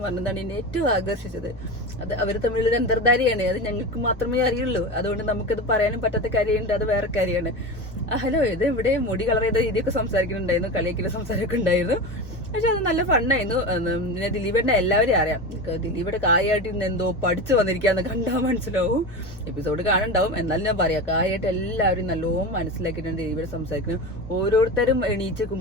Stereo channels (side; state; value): both; normal; correlation 0.25